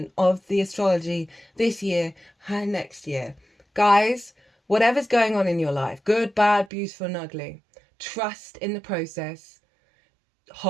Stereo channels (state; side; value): drops out; left; at 6.7 s